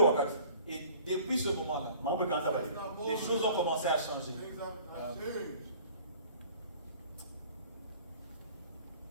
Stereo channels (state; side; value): inverted; both; correlation -0.50